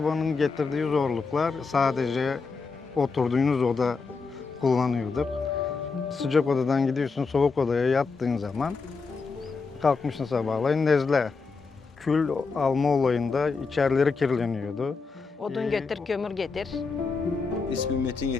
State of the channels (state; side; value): quieter; right; 4.6 dB